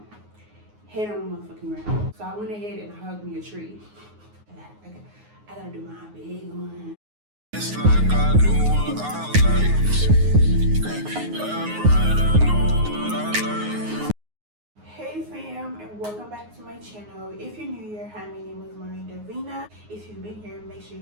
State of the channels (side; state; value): left; late; 9.5 ms